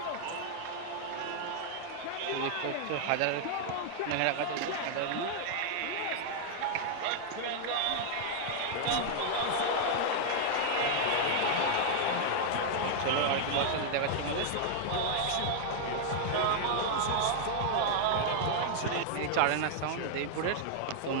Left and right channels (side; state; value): both; different; correlation -0.01